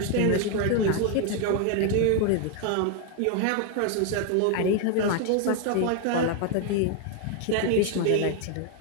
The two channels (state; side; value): different; both; correlation 0.01